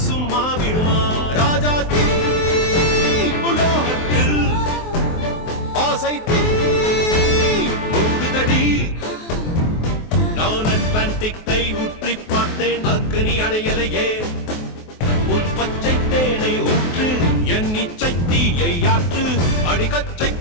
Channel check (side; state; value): right; late; 23 ms